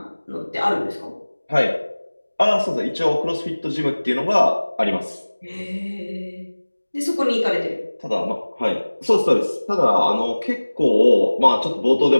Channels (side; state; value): both; inverted; correlation -1.00